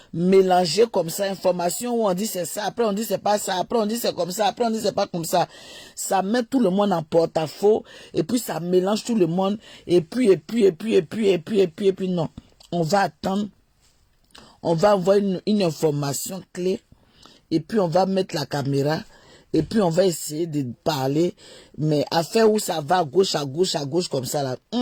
mélangée comme ça, information où on dit c'est ça, après on dit c'est pas ça, après on dit c'est comme ça, après on dit c'est pas comme ça. Ça met tout le monde en porte-à-faux et puis ça mélange tout le monde et puis non. On va attendre, on va avoir une information clé et puis on va mettre la caméra. Et puis on va essayer de parler, mais à faire où ça va à gauche, comme ça là.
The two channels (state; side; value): identical; both; correlation 1.00